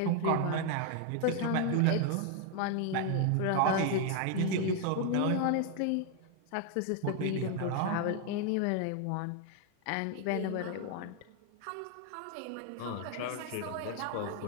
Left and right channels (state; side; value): different; both; correlation 0.01